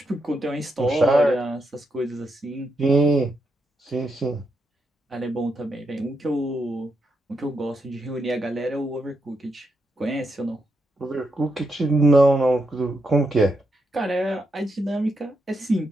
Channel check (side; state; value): both; normal; correlation 0.82